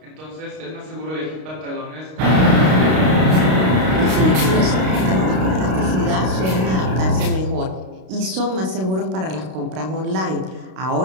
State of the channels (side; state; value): left; late; 32 ms